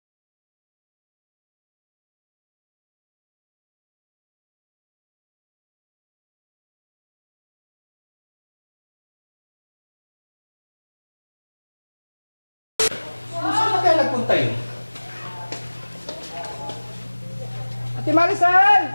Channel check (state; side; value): inverted; both; correlation -1.00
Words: Saan na kaya nagpunta yun? Ate Maricel!